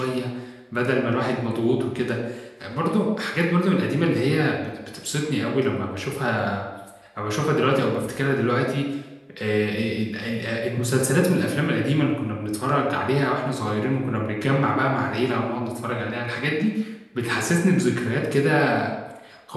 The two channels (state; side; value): identical; both; correlation 1.00